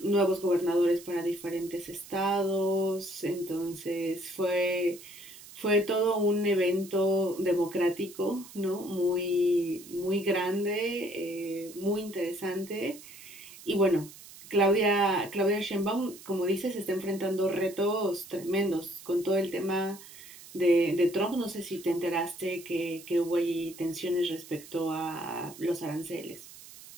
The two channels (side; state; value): right; noise; hiss, 18 dB below the sound